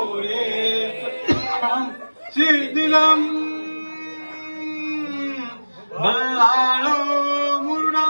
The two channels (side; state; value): both; inverted; correlation -1.00